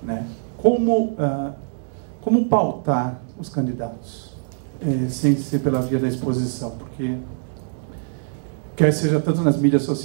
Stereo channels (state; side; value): silent; left; digital silence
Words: né? Como pautar os candidatos, sem ser pela via da exposição? Porque, quer seja tanto nas mídias